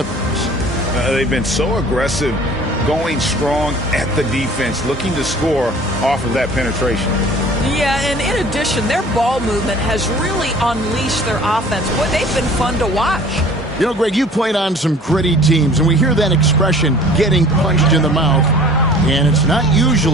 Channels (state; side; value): normal; both; correlation 0.48